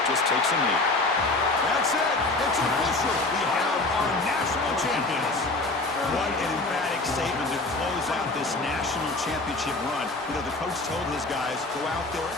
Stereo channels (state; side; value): quieter; right; 3.2 dB